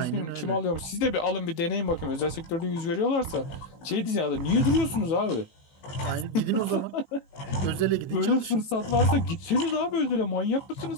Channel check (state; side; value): late; right; 18 ms